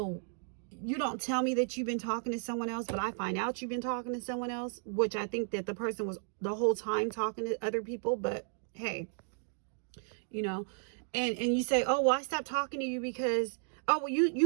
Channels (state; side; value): silent; left; 55 dB below the other